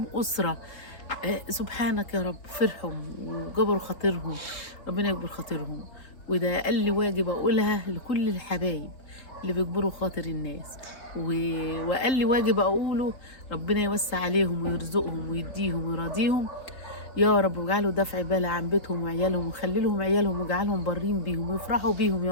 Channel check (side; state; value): right; late; 3.8 ms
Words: أسرة. سبحانك يا رب، فرحهم وجبروا خاطرهم، ربنا يكبر خاطرهم. وده أقل واجب أقولها لكل الحبايب اللي بيكبروا خاطر الناس، وأقل واجب أقوله ربنا يوسع عليهم ويرزقهم ويديهم ويراضيهم يا رب، واجعله دفع بال عن بيتهم وعيالهم، وخلي لهم عيالهم واجعلهم برين بيهم ويفرحوا بيهم